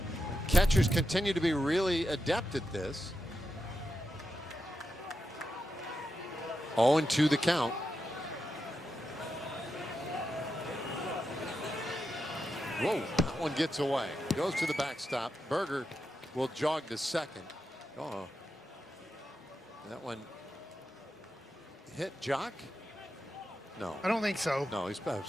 catchers continue to be really adept at this. 0-2 the count. Whoa, that one gets away. Goes to the backstop. Berger will jog to second. Oh, that one hit Jock? No. I don't think so. No, he's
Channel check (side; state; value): both; normal; correlation 0.87